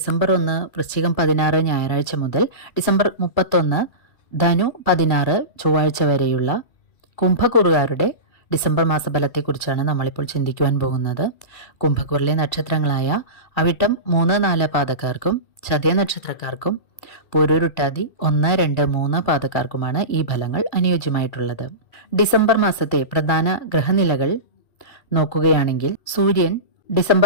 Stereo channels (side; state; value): right; late; 2.2 ms